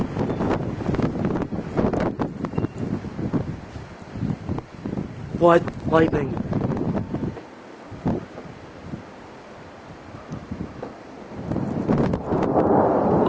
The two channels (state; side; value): identical; both; correlation 1.00